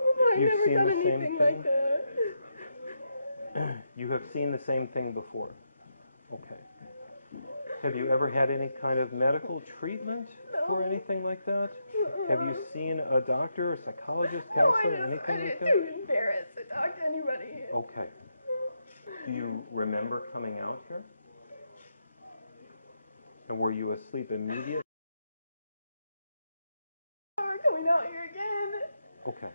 I've never done anything like that. You have seen the same thing before? Okay. Have you ever had any kind of medical treatment for anything like that? Have you seen a doctor, a psychologist, counselor, anything like that? I didn't too embarrassed to talk to anybody. Okay. Do you remember coming out here? And were you asleep immediately? We're coming out here again. Okay.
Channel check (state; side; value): inverted; both; correlation -0.82